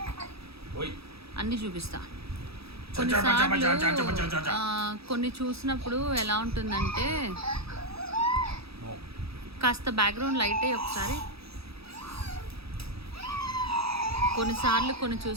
అన్నీ చూపిస్తా. కొన్నిసార్లు కొన్ని చూసినప్పుడు ఎలా ఉంటుందంటే, కాస్త బ్యాక్గ్రౌండ్ లైట్ అయ్యి ఒకసారి. కొన్నిసార్లు కొన్ని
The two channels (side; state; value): left; late; 0.77 ms